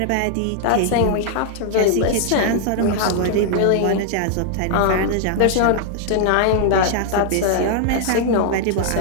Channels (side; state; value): both; different; correlation -0.01